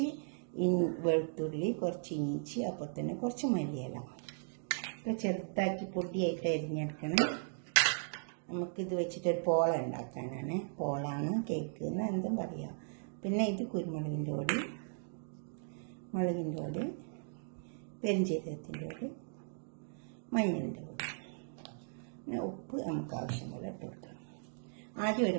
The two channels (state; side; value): silent; left; digital silence